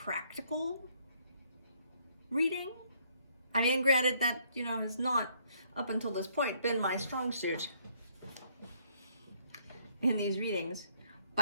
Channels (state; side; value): inverted; both; correlation -0.67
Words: reading, I mean, granted that, has not up until this point been my strong suit in these readings,